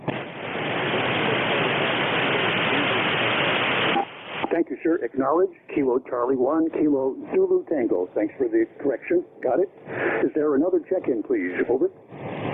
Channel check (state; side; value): identical; both; correlation 1.00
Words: Thank you, sir. Acknowledge. Kilo Charlie 1, Kilo Zulu Tango. Thanks for the correction. Got it. Is there another check-in, please? Over.